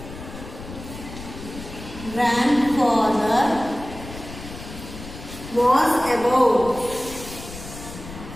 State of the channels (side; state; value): left; noise; rumble, 13 dB below the sound